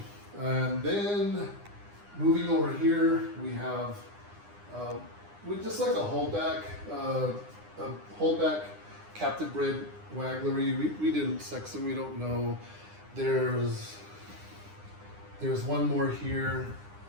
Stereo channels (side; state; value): left; late; 9.8 ms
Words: And then moving over here, we have with just like a holdback captive bred wagglery. We didn't sex them, we don't know. There's one more here.